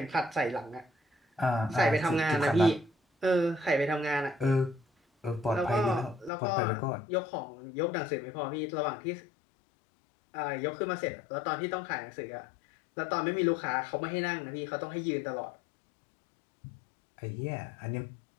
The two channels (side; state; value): right; drops out; at 6.3 s